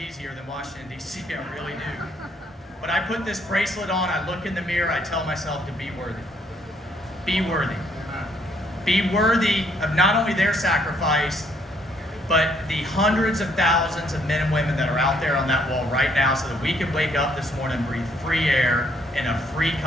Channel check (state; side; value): normal; both; correlation 0.68